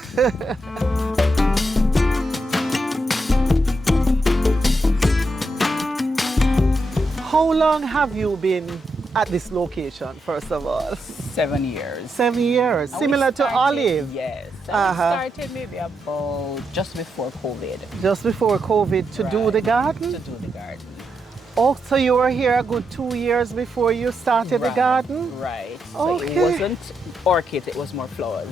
How long have you been at this location, first of all? 7 years. 7 years, And similar we to started- Olive. Yes. And Uh-huh. we started maybe about just before COVID. Just before COVID to do Right. the garden? To do the garden. Oh, so you were here a good 2 years before you started the Right, garden? Right. So Okay. it wasn't orchids, it was more flowers.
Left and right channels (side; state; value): both; normal; correlation 0.83